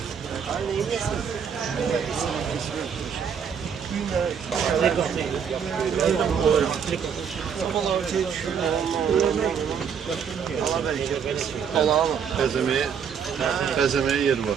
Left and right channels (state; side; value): quieter; left; 7.3 dB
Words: Bezemeye yer var.